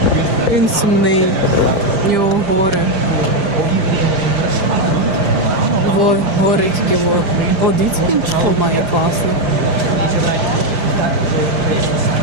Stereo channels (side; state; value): left; late; 5.0 ms